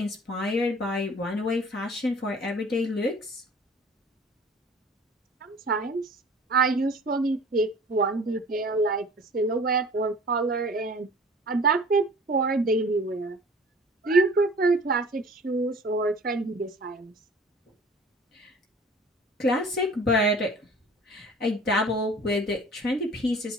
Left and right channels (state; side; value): normal; both; correlation 0.47